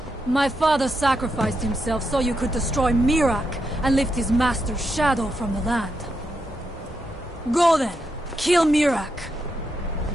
My father sacrificed himself so you could destroy Mirak and lift his master's shadow from the land. Go then. Kill Mirak.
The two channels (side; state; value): both; normal; correlation 0.83